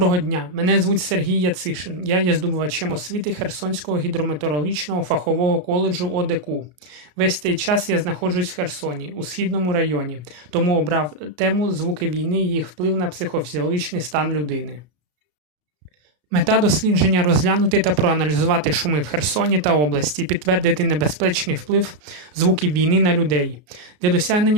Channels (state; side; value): late; left; 33 ms